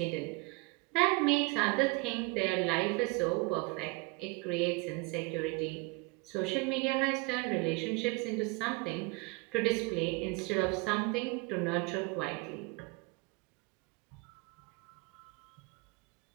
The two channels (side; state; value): left; quieter; 27.3 dB